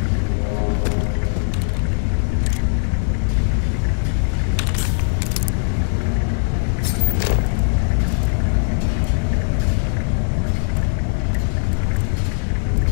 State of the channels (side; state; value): right; silent; digital silence